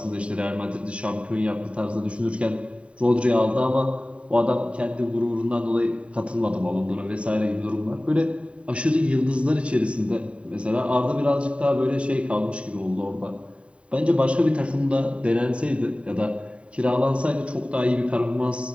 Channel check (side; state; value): left; late; 0.061 ms